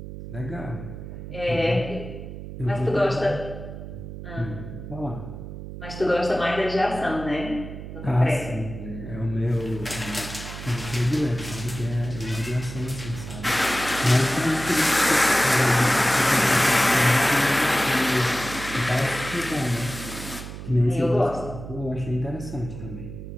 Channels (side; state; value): right; noise; hum, 10 dB below the sound